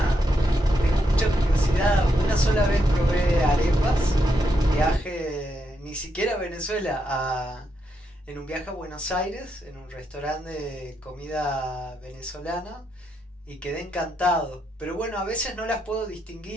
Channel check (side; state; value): both; normal; correlation 0.81